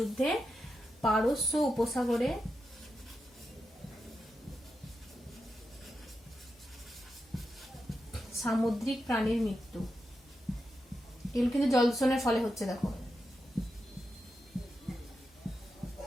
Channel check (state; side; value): normal; both; correlation 0.87